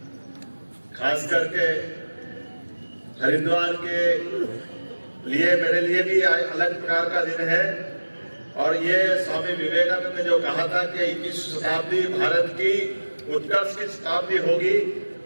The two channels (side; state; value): both; inverted; correlation -1.00